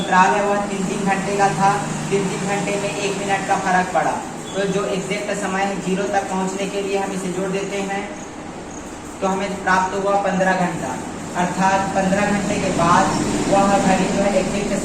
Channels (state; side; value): identical; both; correlation 1.00